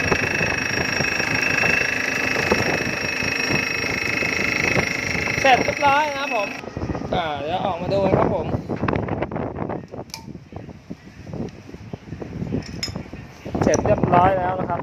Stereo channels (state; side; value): identical; both; correlation 1.00